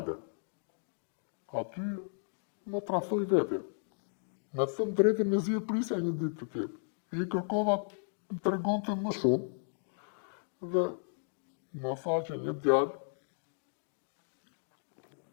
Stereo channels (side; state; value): right; silent; digital silence